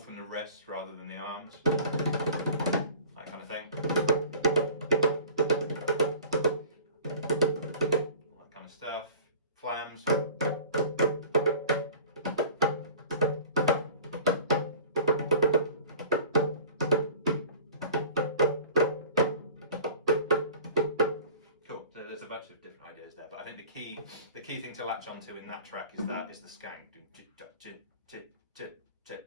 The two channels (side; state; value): both; inverted; correlation -0.43